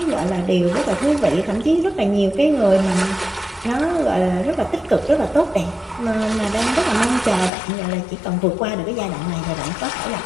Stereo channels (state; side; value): drops out; right; at 7.5 s